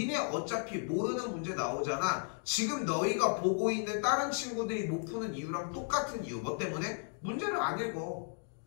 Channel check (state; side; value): silent; right; 55 dB below the other